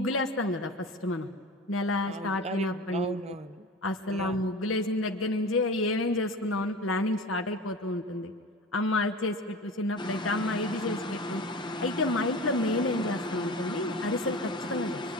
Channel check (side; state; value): both; normal; correlation 0.34